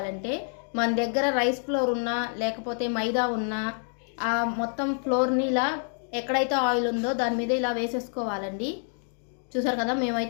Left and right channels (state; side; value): silent; right; 55 dB below the other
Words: మన దగ్గర రైస్ ఫ్లోర్ ఉన్నా లేకపోతే మైదా ఉన్నా ఆ మొత్తం ఫ్లోర్ని ఇలా ఎక్కడైతే ఆయిల్ ఉందో దాని మీద ఇలా వేసేసుకోవాలండి. చూసారు కదా,